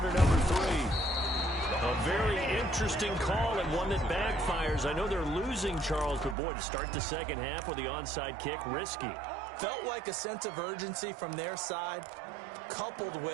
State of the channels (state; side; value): drops out; left; at 6.4 s